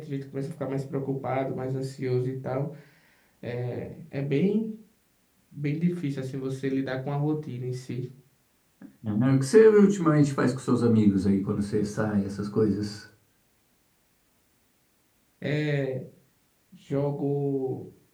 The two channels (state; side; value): identical; both; correlation 1.00